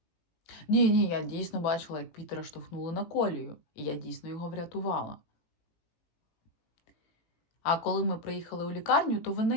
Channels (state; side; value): late; right; 18 ms